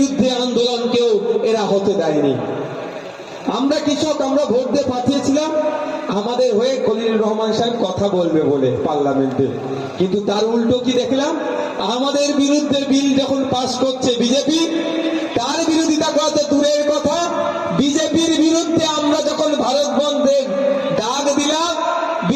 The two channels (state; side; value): identical; both; correlation 1.00